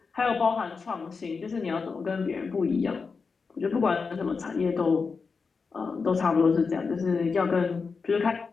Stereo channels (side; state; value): right; quieter; 4.9 dB